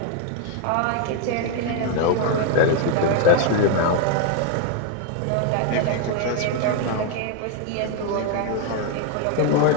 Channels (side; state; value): both; different; correlation 0.01